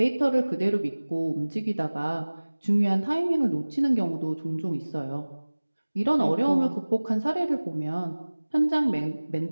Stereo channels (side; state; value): both; inverted; correlation -1.00